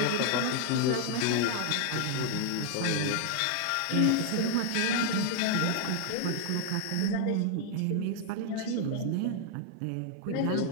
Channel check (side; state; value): both; different; correlation 0.00